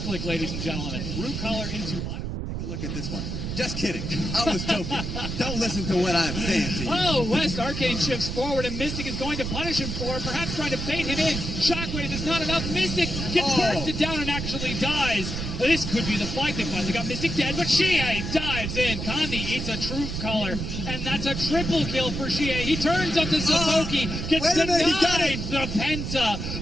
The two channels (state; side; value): noise; right; rumble, 4 dB below the sound